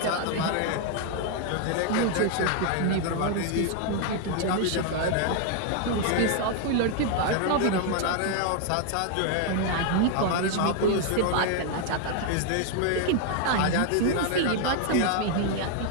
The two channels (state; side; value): different; both; correlation 0.00